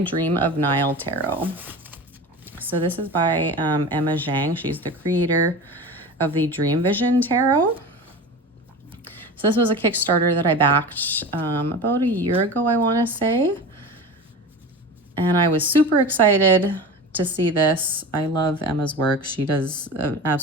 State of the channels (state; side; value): normal; both; correlation 0.31